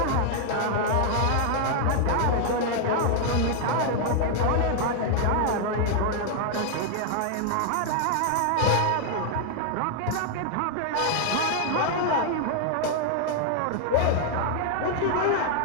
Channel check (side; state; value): both; different; correlation 0.00